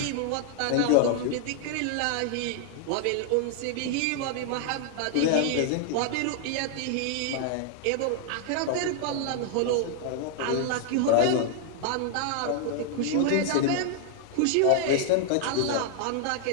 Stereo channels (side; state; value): both; different; correlation 0.00